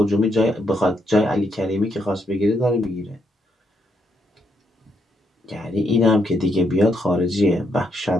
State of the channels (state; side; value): normal; both; correlation 0.76